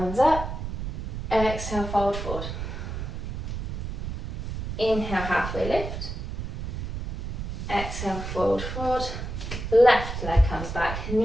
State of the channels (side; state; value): right; noise; rumble, 5 dB below the sound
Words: up. Exhale, fold forward. Inhale, halfway lift. Exhale, fold forward. Left leg comes back,